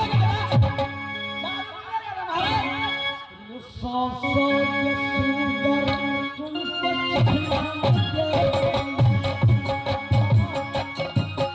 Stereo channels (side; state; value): both; identical; correlation 1.00